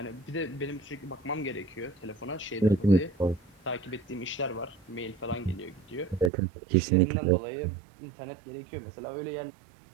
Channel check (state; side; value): drops out; left; at 6.3 s